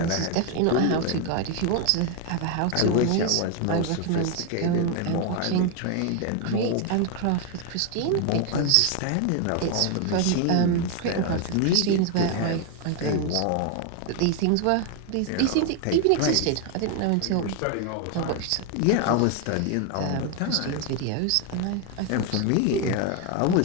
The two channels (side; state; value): both; different; correlation 0.01